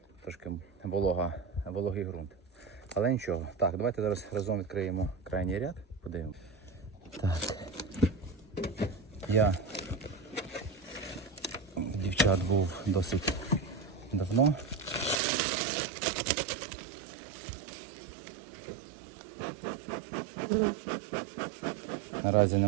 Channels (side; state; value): left; drops out; at 15.2 s